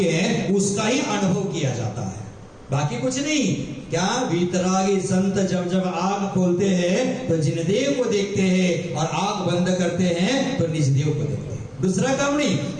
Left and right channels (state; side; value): identical; both; correlation 1.00